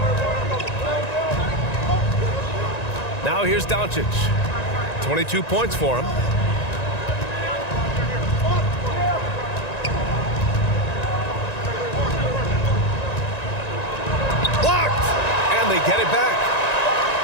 Now here's Doncic. 22 points for him. Blocked! And they get it back.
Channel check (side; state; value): right; late; 1.9 ms